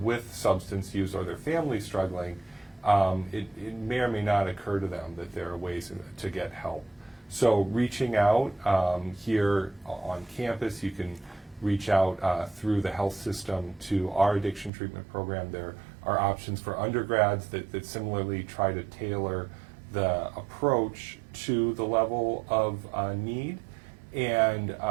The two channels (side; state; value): left; drops out; at 14.7 s